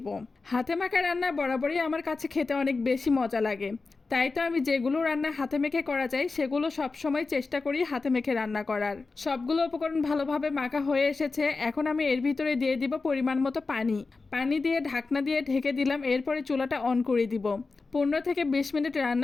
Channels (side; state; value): right; quieter; 4.0 dB